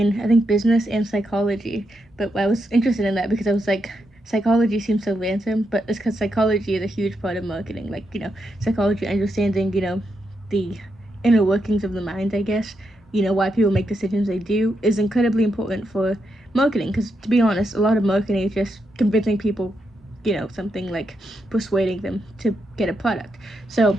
I think, business and psychology. But I was interested in that because I was like, psychology seems so random, but it's because psychology is a huge part of marketing. Like psychology, understanding the inner workings of the mind, I guess, why people make decisions they do, is incredibly important for marketing. Because to be honest, a lot of marketing is just convincing people, something, like persuading them to get a product. So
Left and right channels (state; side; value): normal; both; correlation 0.83